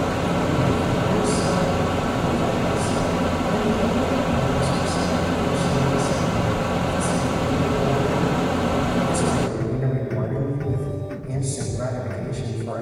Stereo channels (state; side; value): identical; both; correlation 1.00